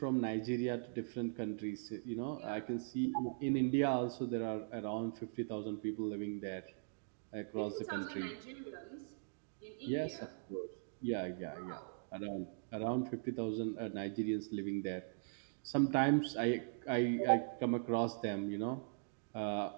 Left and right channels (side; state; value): left; silent; digital silence